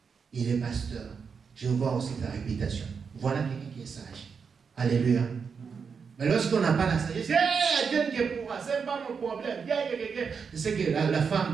Il est pasteur. Je vois aussi ta réputation. Voilà quelqu'un qui est sage. Alléluia. Mais lorsqu'on n'a pas la sagesse, Dieu qui est pour moi, ce n'est pas mon problème. C'est ce que la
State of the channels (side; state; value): left; quieter; 5.9 dB